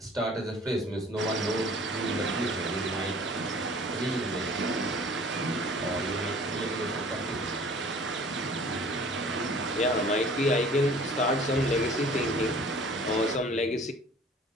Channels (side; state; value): both; normal; correlation 0.49